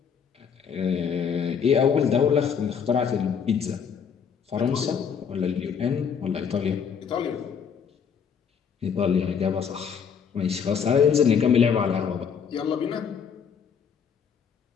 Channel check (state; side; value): quieter; right; 7.0 dB